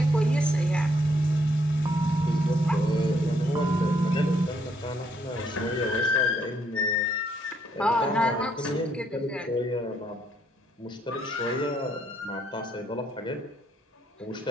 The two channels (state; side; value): normal; both; correlation 0.71